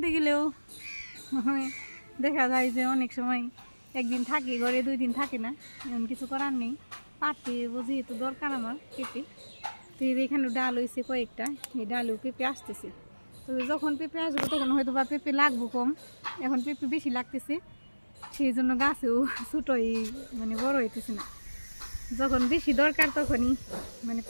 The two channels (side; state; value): both; inverted; correlation -1.00